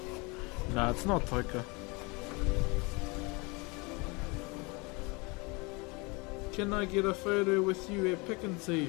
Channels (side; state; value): right; quieter; 27.8 dB